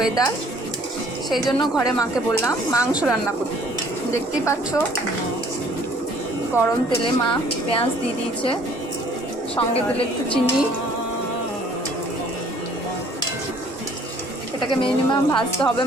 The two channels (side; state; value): both; normal; correlation 0.57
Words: সেই জন্য ঘরে মাকে বললাম মাংস রান্না করতে। দেখতেই পাচ্ছ গরম তেলে মা পেঁয়াজ দিয়ে দিয়েছে, সঙ্গে দিলে একটু চিনি। এটাকে মিনিমাম ভাজতে হবে